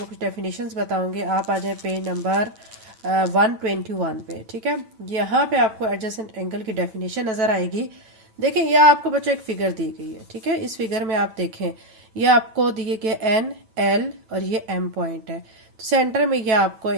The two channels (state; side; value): late; left; 9.0 ms